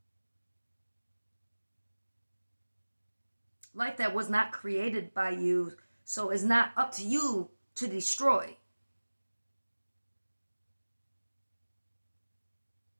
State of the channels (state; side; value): inverted; both; correlation -1.00